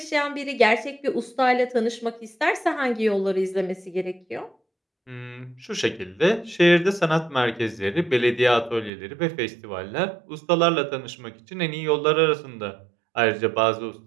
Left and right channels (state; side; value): drops out; left; at 8.9 s